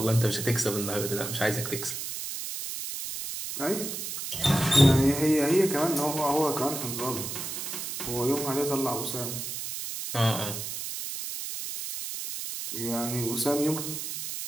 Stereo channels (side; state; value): right; noise; hiss, 6 dB below the sound